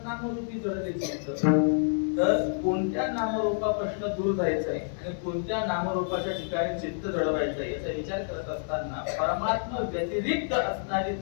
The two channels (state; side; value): silent; right; digital silence